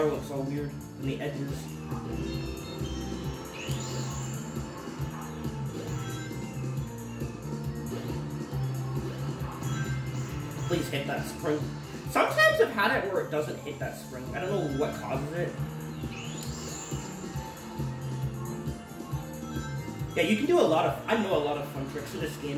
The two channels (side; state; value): both; identical; correlation 1.00